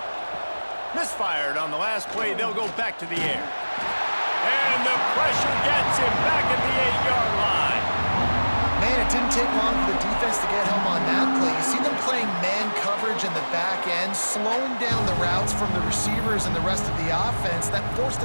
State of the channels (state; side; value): inverted; both; correlation -1.00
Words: Misfired on the last play. They'll go back to the air. And the pressure gets him back at the 8-yard line. Man, it didn't take long for the defense to get home on that play. You see them playing man coverage in the back end, slowing down the routes from the receivers and the rest of the offense. That forced